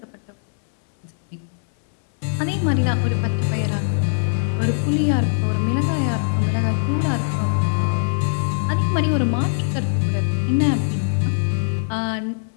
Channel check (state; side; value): silent; right; digital silence